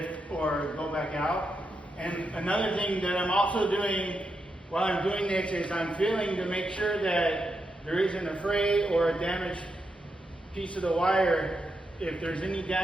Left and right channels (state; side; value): normal; both; correlation 0.84